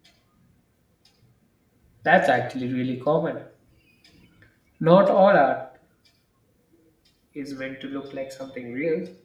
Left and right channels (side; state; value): both; identical; correlation 1.00